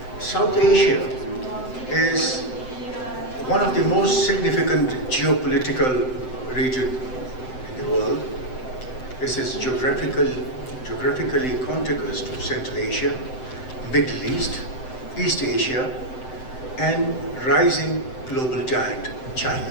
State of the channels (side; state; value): right; late; 7.8 ms